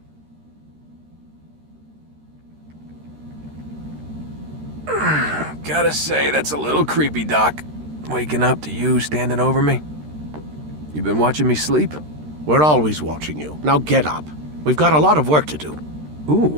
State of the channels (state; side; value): late; left; 13 ms